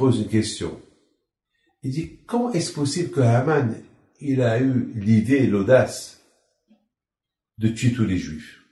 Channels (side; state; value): both; identical; correlation 1.00